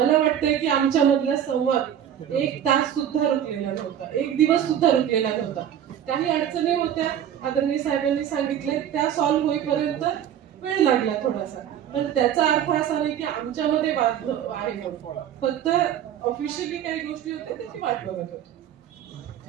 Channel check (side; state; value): left; quieter; 10.0 dB